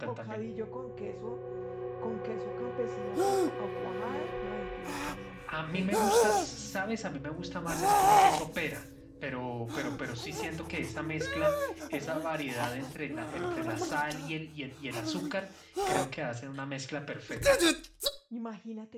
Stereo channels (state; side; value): identical; both; correlation 1.00